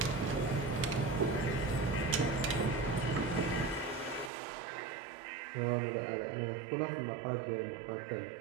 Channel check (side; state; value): left; drops out; at 4.3 s